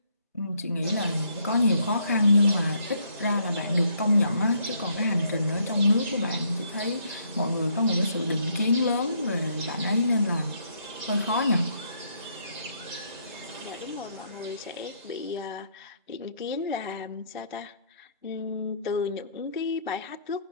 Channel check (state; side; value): inverted; both; correlation -0.70